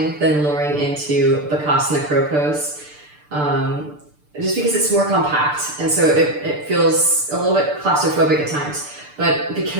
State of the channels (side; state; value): left; late; 6.8 ms